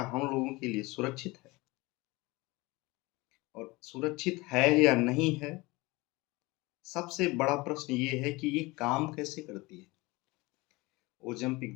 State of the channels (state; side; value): quieter; right; 22.9 dB